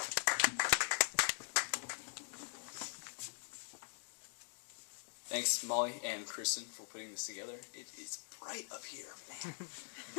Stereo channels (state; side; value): silent; right; digital silence